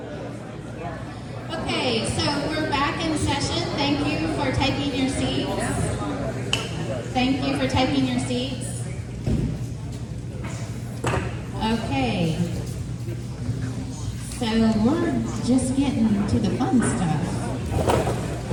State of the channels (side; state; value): both; identical; correlation 1.00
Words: Okay, so we're back in session. Thank you for taking your seats. Thank you for taking your seats. Okay. So we're just getting to the fun stuff.